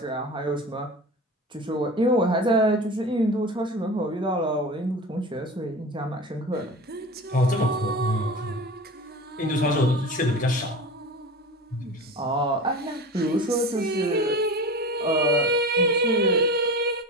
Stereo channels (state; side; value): normal; both; correlation 0.32